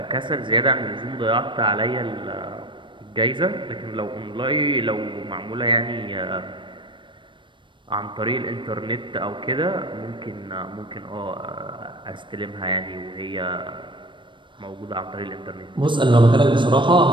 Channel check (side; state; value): left; late; 0.24 ms